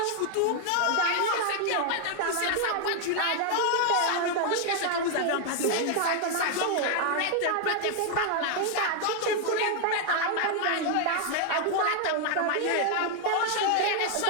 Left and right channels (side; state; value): both; different; correlation 0.00